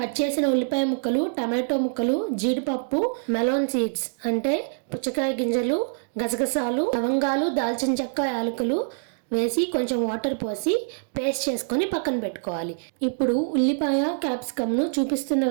చేసిన ఉల్లిపాయ ముక్కలు, టమాటో ముక్కలు, జీడిపప్పు, మెలోన్ సీడ్స్ అంటే పుచ్చకాయ గింజలు, గసగసాలు, లవంగాలు, దాల్చిన చెక్క, యాలకులు వేసి కొంచెం వాటర్ పోసి పేస్ట్ చేసుకొని పక్కన పెట్టుకోవాలి. ఇప్పుడు ఉల్లిపాయ, క్యాప్సికమ్ను చూపిస్తున్న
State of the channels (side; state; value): left; silent; digital silence